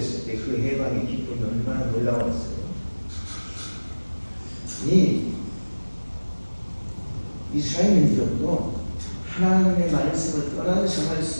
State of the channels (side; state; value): both; inverted; correlation -1.00